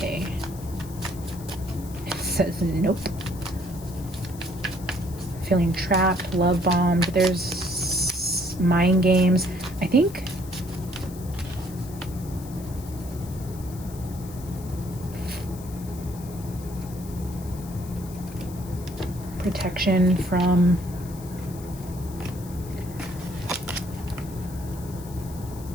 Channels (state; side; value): noise; left; hiss, 18 dB below the sound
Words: says nope. Feeling trapped, love bombed. There's mind games. I think protection from